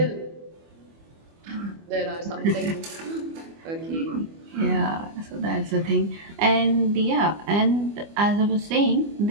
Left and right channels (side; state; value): left; late; 25 ms